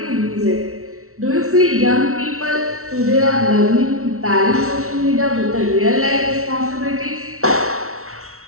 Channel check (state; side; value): late; left; 0.63 ms